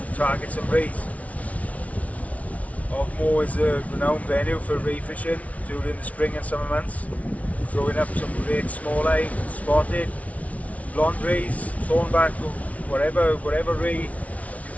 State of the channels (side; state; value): right; late; 0.067 ms